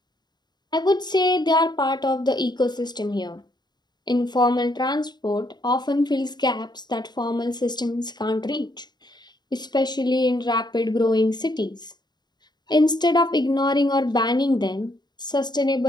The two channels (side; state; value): right; late; 0.21 ms